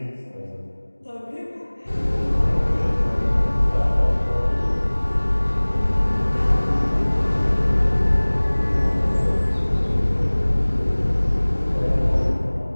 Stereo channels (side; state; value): both; inverted; correlation -1.00